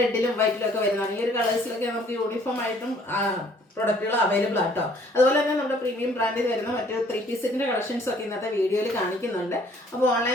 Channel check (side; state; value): both; normal; correlation 0.59